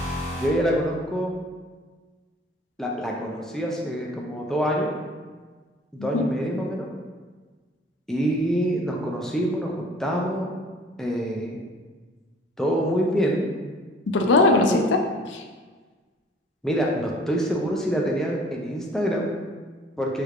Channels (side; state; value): both; normal; correlation 0.51